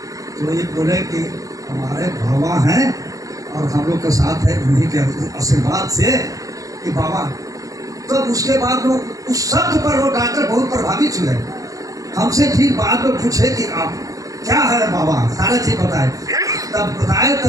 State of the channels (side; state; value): left; late; 0.17 ms